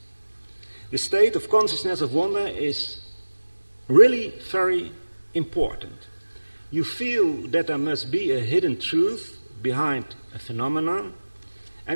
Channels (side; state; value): both; inverted; correlation -1.00